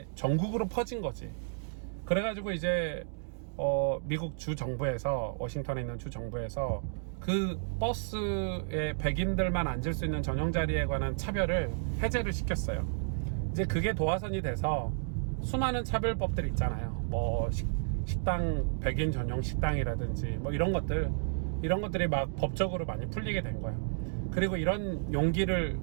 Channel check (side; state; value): left; silent; digital silence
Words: 전국으로 퍼진 거지. 그래가지고 이제 미국 주 정부에서, 워싱턴에 있는 주 정부에서 그 버스에 백인들만 앉을 수 있는 전용 자리에 관한 차별을 해제를 시켰어요. 이제 그게 도화선이 돼서 수많은 차별법들이 있잖아요. 식당, 백인 전용 식당이라든지 뭐 이런 것들이 막 법적으로 많이 풀리게 된 거예요. 그리고 이런 용기를